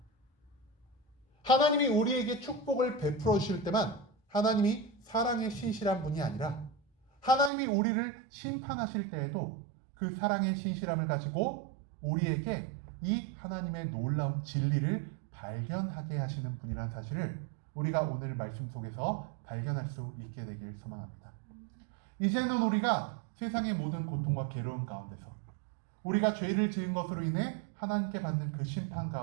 하나님이 우리에게 축복을 베풀어 주실 때만 하나님이 사랑의 신실한 분이 아니라 하나님이 우리를 심판하실 때에도 그 사랑의 신실함을 가지고 우리에게 이 하나님의 놀라운 진리를 발견하게 하시는 분이라는 사실을 우리가 오늘 말씀 속에서 발견할 수 있게 되길 소망합니다. 이제는 우리가 세상의 모든 고통과 괴로움 가운데서 우리가 죄를 지은 것으로 인해 하나님께 받는 그 심판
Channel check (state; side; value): drops out; left; at 7.5 s